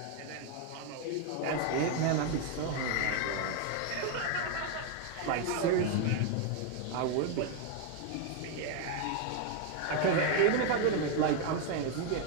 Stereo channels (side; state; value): both; different; correlation 0.01